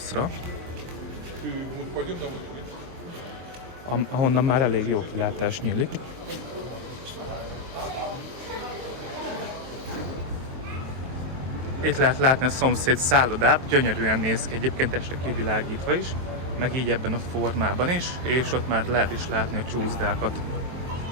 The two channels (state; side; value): late; left; 23 ms